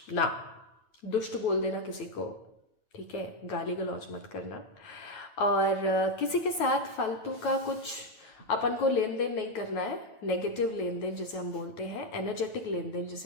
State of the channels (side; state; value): right; late; 9.1 ms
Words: ना दुष्ट बोल देना किसी को, ठीक है, गाली गलौज मत करना, और किसी के साथ फालतू का कुछ अपन को लेन देन नहीं करना है, नेगेटिव लेन देन जिसे हम बोलते हैं, एनर्जेटिक लेन देन